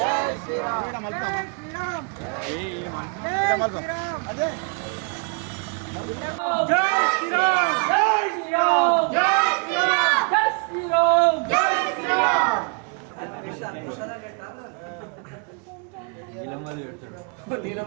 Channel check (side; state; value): left; quieter; 36.4 dB